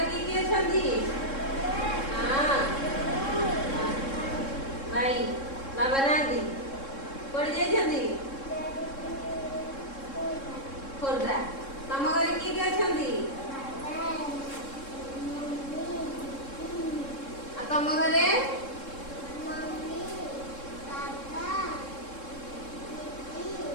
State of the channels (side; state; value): right; late; 3.7 ms